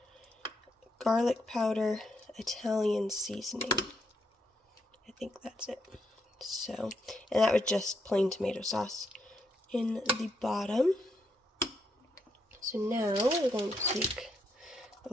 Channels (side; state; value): both; normal; correlation 0.78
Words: garlic powder, Italian seasoning. I think that's it. So, and that was just plain tomato sauce in the bottom. So now we're going to take a